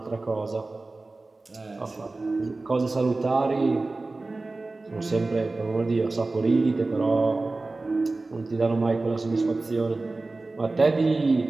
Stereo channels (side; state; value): left; quieter; 3.3 dB